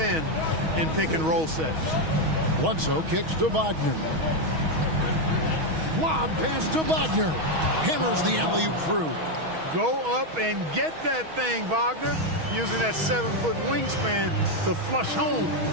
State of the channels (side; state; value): left; late; 6.3 ms